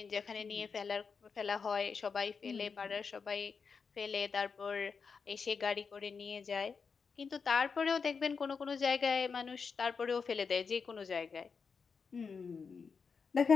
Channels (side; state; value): right; quieter; 5.5 dB